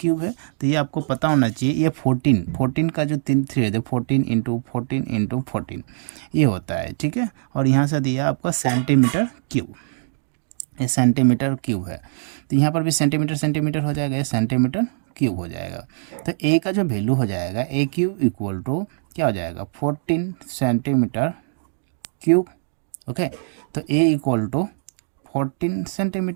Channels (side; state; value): left; silent; digital silence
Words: है, तो ये आपको पता होना चाहिए। ये 14 का जो 3 है, 14 इंटू 14 इंटू 14 ये होता है, ठीक है। और यहाँ से दिया आपका सेंटीमीटर क्यूब, ये सेंटीमीटर क्यूब है। तो यहाँ पर भी सेंटीमीटर सेंटीमीटर हो जाएगा, ये सेंटीमीटर क्यूब हो जाएगा। तो ए का जो वैल्यू हो जाएगा, ए क्यूब इक्वल टू क्या हो जाएगा? 14 सेंटीमीटर क्यूब। ओके, तो ए इक्वल टू 14